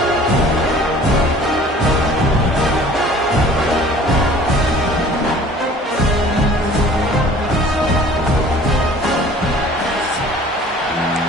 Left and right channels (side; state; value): both; normal; correlation 0.49